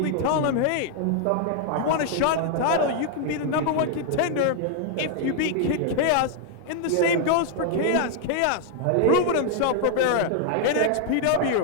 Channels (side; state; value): both; different; correlation 0.00